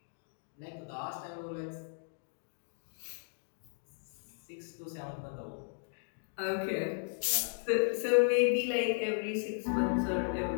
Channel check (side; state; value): right; silent; digital silence